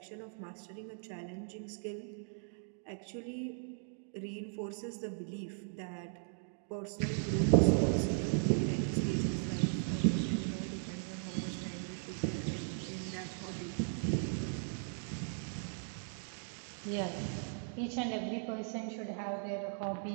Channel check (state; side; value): silent; left; digital silence